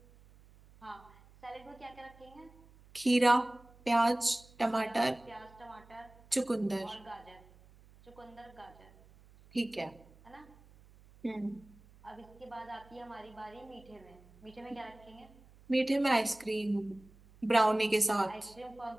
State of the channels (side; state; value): right; noise; hum, 25 dB below the sound